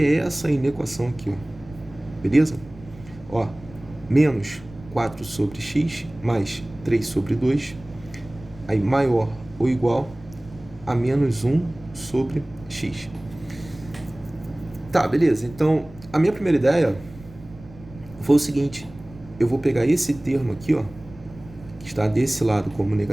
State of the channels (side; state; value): right; noise; rumble, 19 dB below the sound